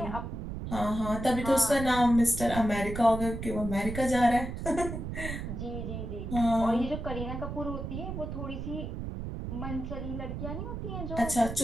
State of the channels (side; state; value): right; noise; rumble, 6 dB below the sound